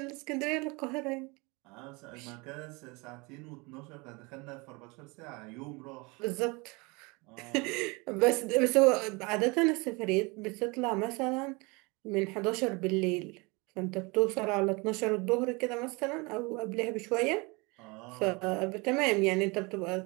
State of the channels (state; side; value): quieter; left; 27.1 dB